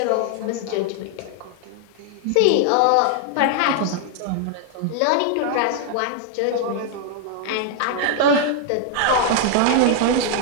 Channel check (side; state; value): both; different; correlation 0.00